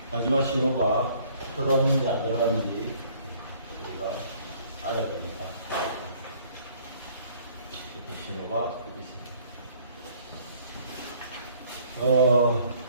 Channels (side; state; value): both; inverted; correlation -0.59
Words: 마지막 신호가 들어왔는지 안 들어왔는지 우리가 알아야 됩니다. 이렇게 신호가 있습니다.